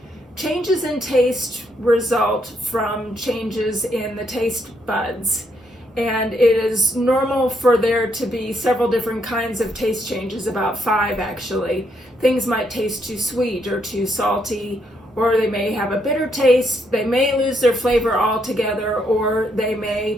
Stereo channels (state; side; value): normal; both; correlation 0.75